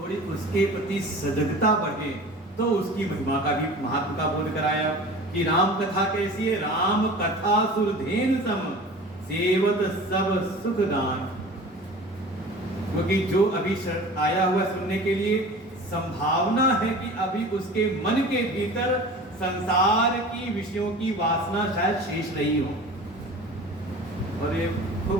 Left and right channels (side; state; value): both; normal; correlation 0.39